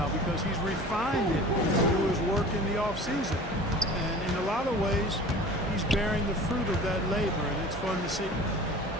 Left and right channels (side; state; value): both; normal; correlation 0.41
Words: because he's refined it through his work in the offseason. And in a lot of ways, he's bearing the fruit of that labor, and it's fun to see.